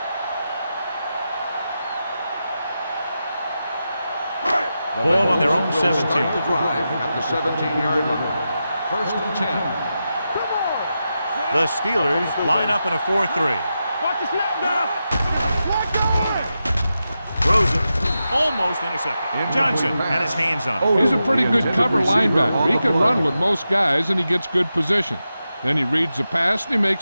Ball on their own 17. Start the drive at the 17-yard line. 1st and 10. The Steelers line up in a 4-3. Watch the snap, dog. Throws it. Almost intercepted. Johnson had his hands on it. He's a pretty good cover linebacker. He can run with most guys, and he gets good position. Then he reads the pass, and he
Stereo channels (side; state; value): both; inverted; correlation -0.89